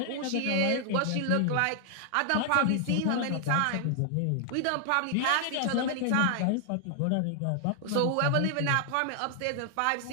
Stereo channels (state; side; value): different; both; correlation 0.00